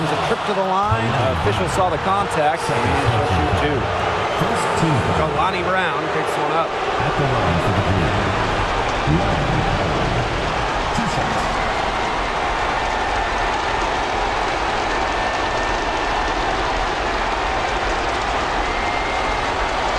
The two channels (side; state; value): both; identical; correlation 1.00